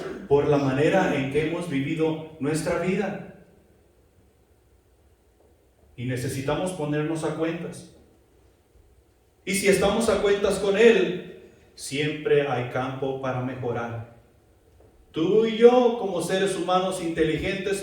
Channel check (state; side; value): identical; both; correlation 1.00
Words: por la manera en que hemos vivido nuestra vida. Y necesitamos ponernos a cuentas. Y si estamos a cuentas con Él, siempre hay campo para mejorar. Tú y yo, como seres humanos inteligentes,